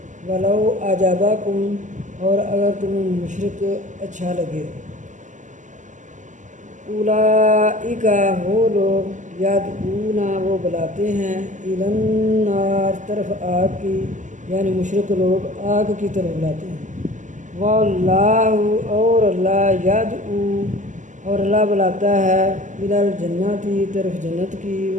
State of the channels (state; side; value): late; left; 0.36 ms